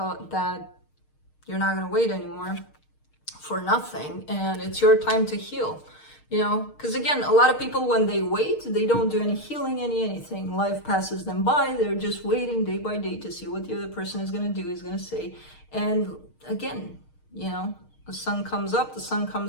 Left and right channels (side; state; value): right; late; 6.5 ms